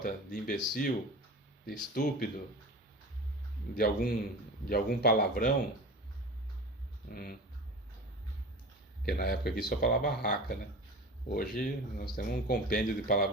de imbecil, de estúpido, de algum palavrão? Porque na época aqui só falava raca, né? Hoje nós temos um compêndio de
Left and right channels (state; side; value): normal; both; correlation 0.33